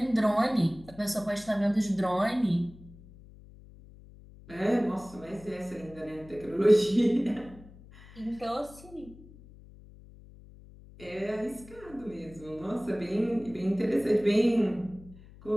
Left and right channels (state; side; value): noise; left; hum, 21 dB below the sound